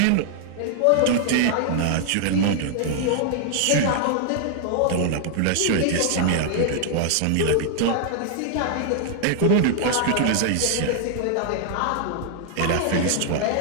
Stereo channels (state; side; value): different; both; correlation 0.00